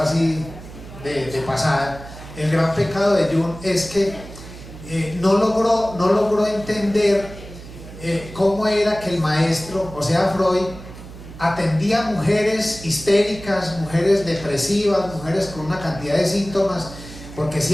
así de pasada, el gran pecado de Jung es que no logró entender cómo era que el maestro, o sea Freud, atendía a mujeres histéricas, mujeres depresivas, mujeres con una cantidad de síntomas, porque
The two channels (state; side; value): noise; right; hum, 15 dB below the sound